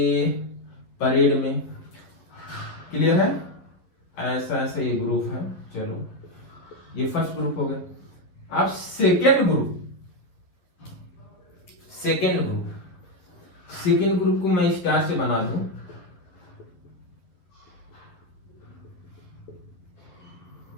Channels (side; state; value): right; late; 11 ms